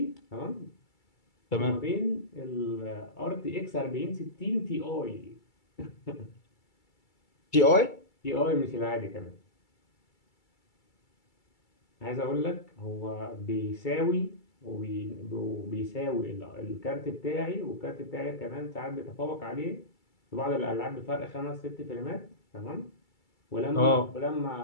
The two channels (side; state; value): right; late; 2.3 ms